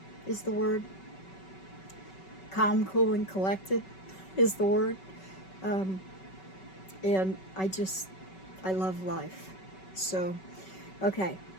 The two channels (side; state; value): right; late; 5.3 ms